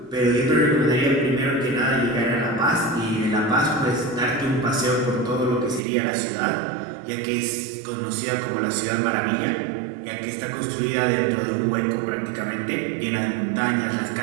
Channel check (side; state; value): left; drops out; at 5.8 s